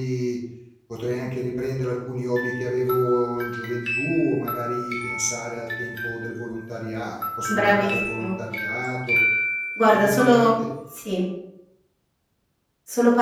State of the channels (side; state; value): both; identical; correlation 1.00